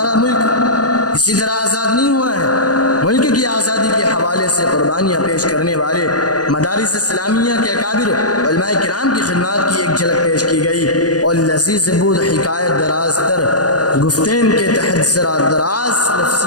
ملک اسی طرح آزاد نہیں ہوا ہے۔ ملک کی آزادی کے حوالے سے قربانیاں پیش کرنے والے مدارس اسلامیہ کے اکابر علماء کرام کی خدمات کی ایک جھلک پیش کی گئی اور لذیذ بود حکایت دراز تر گفتین کے تحت ذرا دراز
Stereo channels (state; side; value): late; right; 0.68 ms